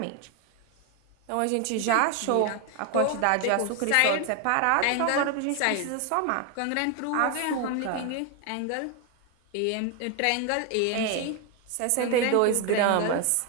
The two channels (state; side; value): different; both; correlation 0.01